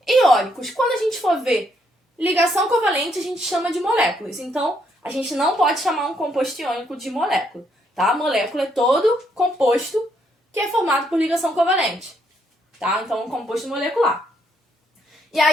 iônicos. Quando a gente for ver ligação covalente, a gente chama de moléculas. Então, a gente não pode chamar um composto iônico de molécula. Tá? Molécula é todo composto que é formado por ligação covalente. Tá? Então, um composto molecular. E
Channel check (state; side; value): normal; both; correlation 0.73